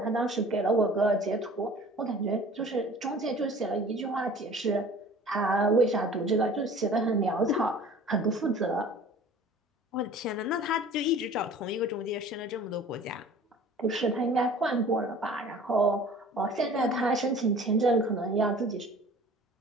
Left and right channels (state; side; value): normal; both; correlation 0.46